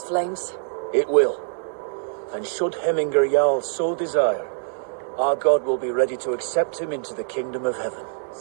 flames? It will. And should Hemminger Jarl so desire, our god will be ready to accept him into the kingdom of heaven.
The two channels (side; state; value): left; silent; digital silence